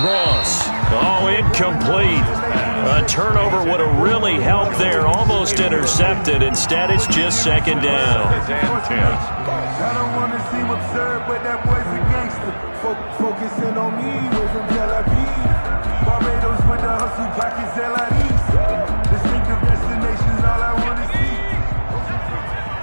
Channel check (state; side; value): inverted; both; correlation -1.00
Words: Oh, incomplete. A turnover would have really helped there. Almost intercepted. Instead, it's just 2nd down. I don't want to seem absurd, but that boy's a gangster. Focusing on me, we're from Tel Aviv. Barbados with the hustle, pockets LIDs. Distinctive destinations, all I want to see.